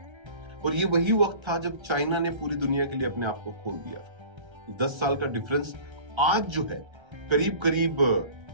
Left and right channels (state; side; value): late; left; 1.3 ms